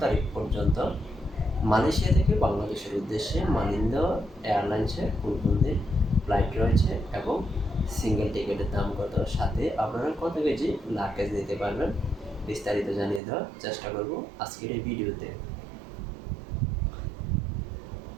তারিখ পর্যন্ত মালয়েশিয়া থেকে বাংলাদেশের উদ্দেশ্যে মালিন্দা এয়ারলাইন্সের কোন কোন দিন ফ্লাইট রয়েছে এবং সিঙ্গেল টিকিটের দাম কত, সাথে আপনারা কত কেজি লাগেজ নিতে পারবেন, বিস্তারিত জানিয়ে দেওয়ার চেষ্টা করব আজকের এই ভিডিওতে।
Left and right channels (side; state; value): left; drops out; at 13.2 s